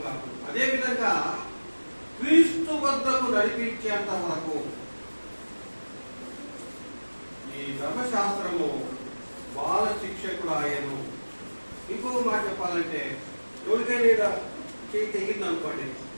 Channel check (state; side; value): inverted; both; correlation -1.00